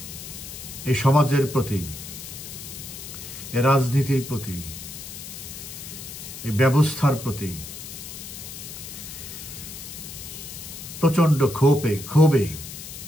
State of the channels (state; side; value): noise; left; hiss, 11 dB below the sound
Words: এই সমাজের প্রতি, এই রাজনীতির প্রতি, এই ব্যবস্থার প্রতি প্রচন্ড ক্ষোভে